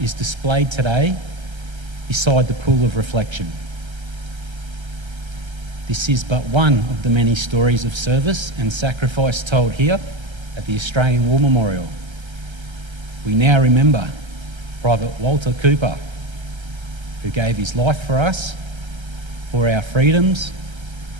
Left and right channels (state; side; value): late; left; 1.3 ms